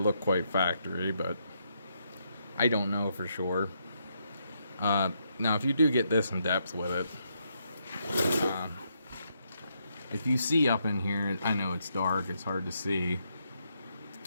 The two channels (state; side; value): inverted; both; correlation -0.78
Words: quite factory, but I don't know for sure. Now, if you do get this in depth with it, if you see up in here, I know it's dark, it's hard to see.